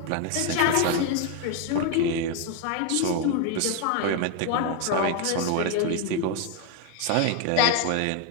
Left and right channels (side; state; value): both; different; correlation 0.01